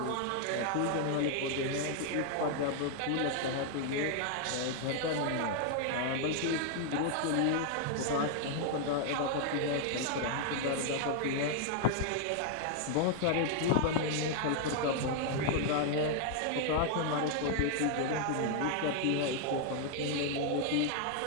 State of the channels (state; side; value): different; both; correlation 0.00